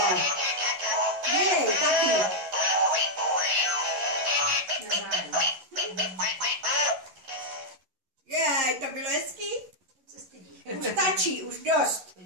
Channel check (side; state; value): left; late; 11 ms